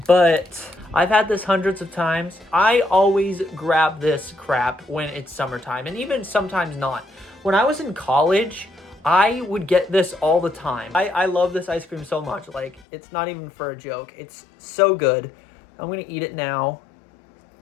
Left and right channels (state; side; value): drops out; right; at 12.9 s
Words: but I've had this hundreds of times. I always grab this crap when it's summertime, and even sometimes not. When I was in college, I would get this all the time. I love this ice cream so much. Like, it's not even for a joke. It's so good. I'm gonna eat it now.